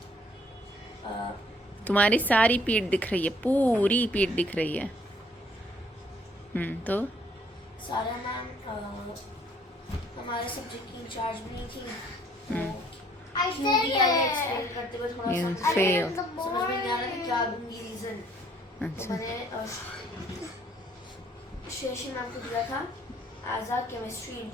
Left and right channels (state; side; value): normal; both; correlation 0.62